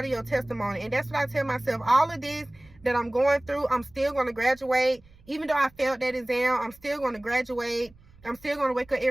of your testimony. And that's what I tell myself. All of this that I'm going through, I'm still going to graduate. Even though I failed that exam, I'm still going to graduate. I'm still going to wake up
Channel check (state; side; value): noise; right; rumble, 27 dB below the sound